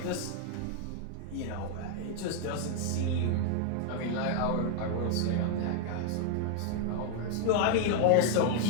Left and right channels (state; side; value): different; both; correlation 0.00